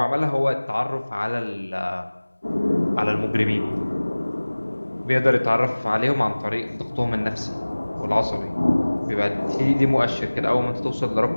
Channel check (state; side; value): inverted; both; correlation -1.00